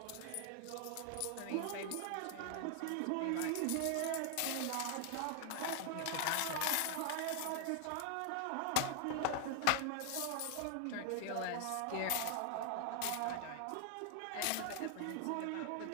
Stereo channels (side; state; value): both; different; correlation 0.00